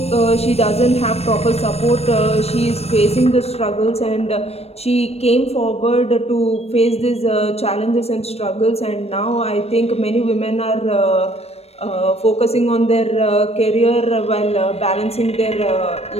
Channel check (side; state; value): right; late; 0.30 ms